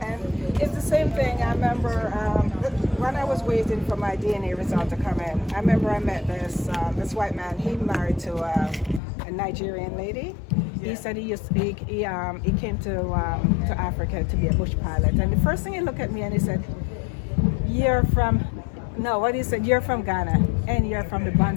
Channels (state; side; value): drops out; right; at 9.0 s